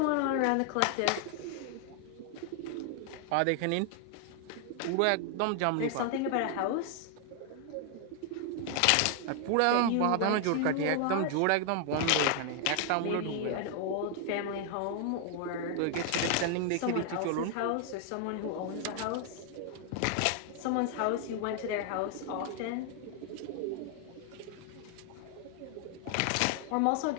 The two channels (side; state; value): both; different; correlation 0.00